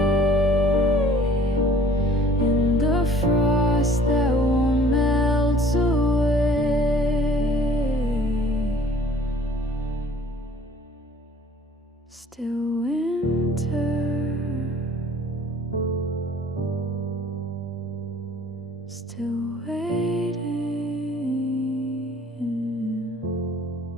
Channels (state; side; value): normal; both; correlation 0.53